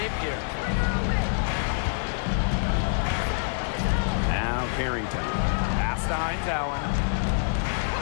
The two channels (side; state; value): right; silent; digital silence